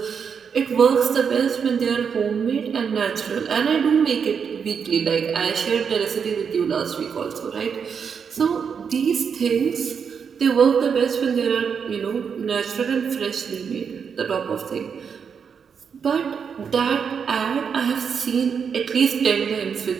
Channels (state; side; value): quieter; left; 6.6 dB